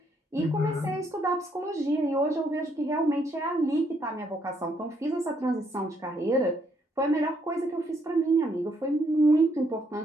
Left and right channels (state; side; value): normal; both; correlation 0.72